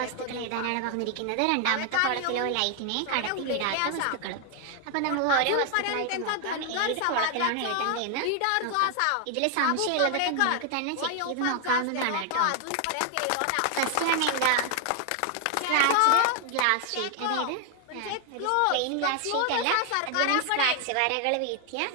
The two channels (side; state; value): both; different; correlation 0.00